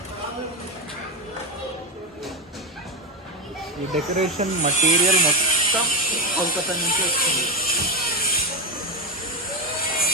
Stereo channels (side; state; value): both; normal; correlation 0.11